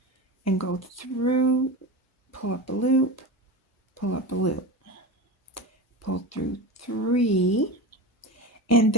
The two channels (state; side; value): normal; both; correlation 0.25